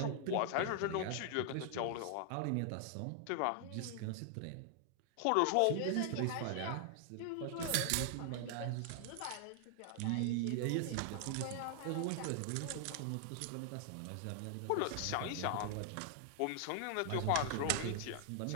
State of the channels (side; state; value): both; different; correlation 0.00